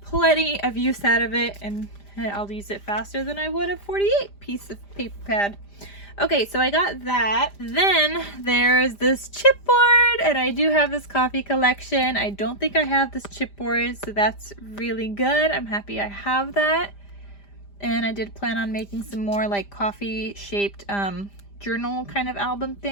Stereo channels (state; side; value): late; right; 5.0 ms